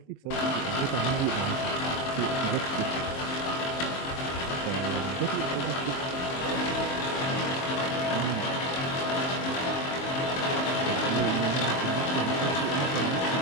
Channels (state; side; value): late; right; 23 ms